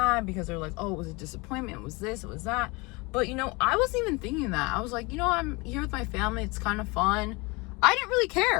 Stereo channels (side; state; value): right; quieter; 26.1 dB